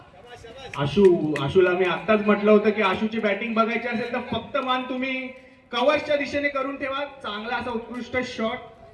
आशूला मी आत्ताच म्हटलं होतं की आशूची बॅटिंग बघायची असेल तर फक्त मान तुम्ही कव्हरच्या दिशेने करून ठेवा. चांगला असा उत्कृष्ट शॉट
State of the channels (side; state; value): both; identical; correlation 1.00